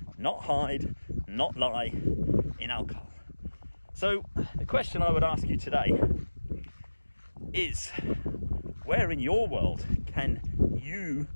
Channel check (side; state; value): both; inverted; correlation -1.00